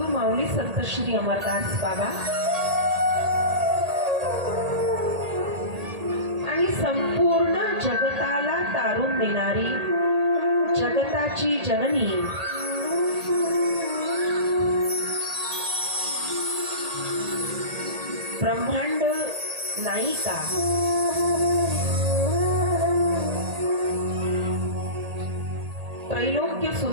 माऊली संत श्री अमरदास बाबा आणि संपूर्ण जगताला तारून देणारी जगताची जननी ब्रह्मांड नायिका त्रैलोक्य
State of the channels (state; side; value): late; left; 1.8 ms